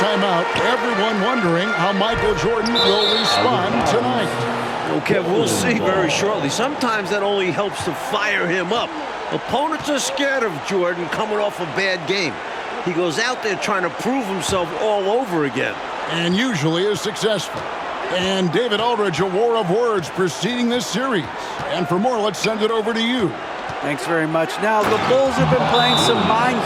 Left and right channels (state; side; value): identical; both; correlation 1.00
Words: out, everyone wondering how Michael Jordan will respond tonight. Okay, we'll see very shortly. Sometimes that only helps to fire him up. Opponents are scared of Jordan coming off a bad game. He goes out there trying to prove himself all over again. And usually is successful. And David Aldridge, a war of words preceding this series. And for more, let's send it over to you. Thanks very much. Now, the Bulls have been playing some mind